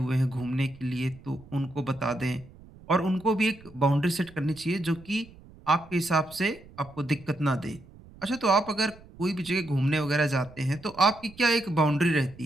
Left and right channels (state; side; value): noise; right; rumble, 22 dB below the sound